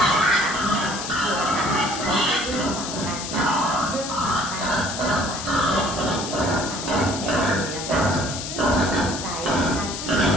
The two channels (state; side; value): noise; left; hiss, 7 dB below the sound